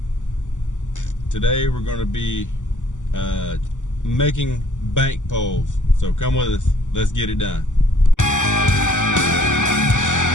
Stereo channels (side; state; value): right; late; 0.86 ms